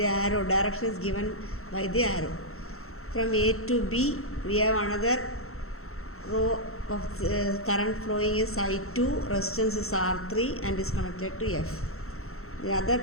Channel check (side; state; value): right; late; 0.63 ms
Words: arrow direction is given by the arrow. From A to B we have another row of current flowing is I2, resistance is R3 and is connected to F. The other